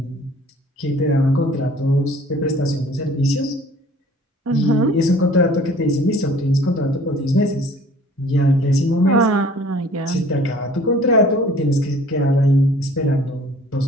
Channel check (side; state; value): both; normal; correlation 0.51